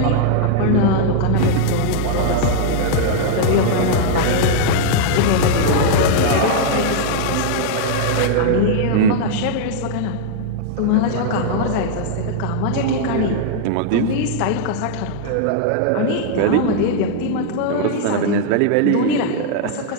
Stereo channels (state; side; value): different; both; correlation -0.01